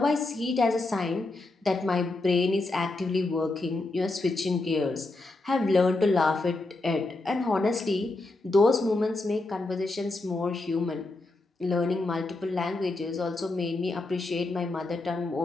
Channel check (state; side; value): quieter; right; 3.0 dB